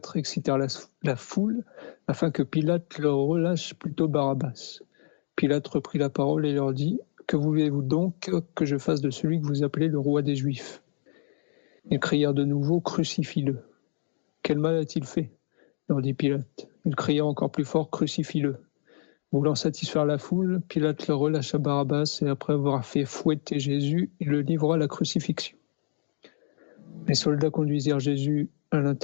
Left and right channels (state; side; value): silent; right; digital silence